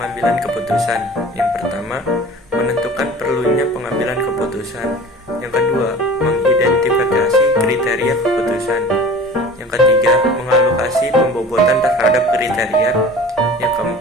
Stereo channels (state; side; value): normal; both; correlation 0.41